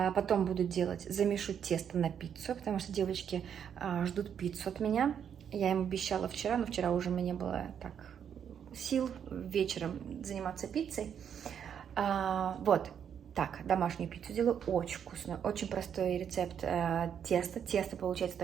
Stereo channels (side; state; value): left; quieter; 8.3 dB